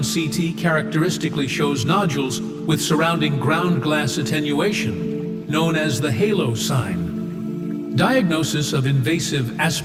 CT characteristically shows nodules with surrounding ground glass attenuation, known as the halo sign. Diagnosis of invasive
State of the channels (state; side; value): identical; both; correlation 1.00